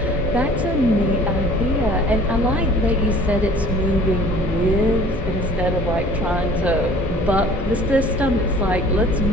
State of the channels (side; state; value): both; normal; correlation 0.50